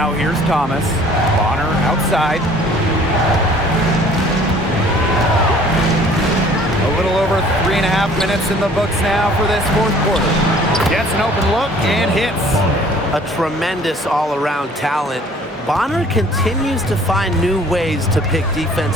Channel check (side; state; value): both; normal; correlation 0.54